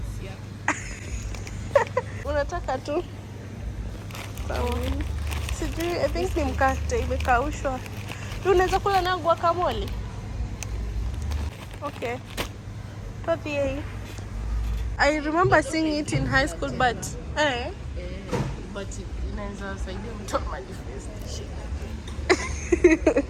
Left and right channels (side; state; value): both; identical; correlation 1.00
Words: Unataka tu? Sawa. Sijui, I think ni mkate imekaushwa. Unaweza kula na guacamole? Okay. I remember seeing it in high school, but but inaweza saidia mtu manifestation.